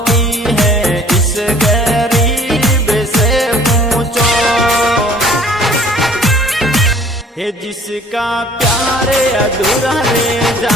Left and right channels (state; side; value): normal; both; correlation 0.53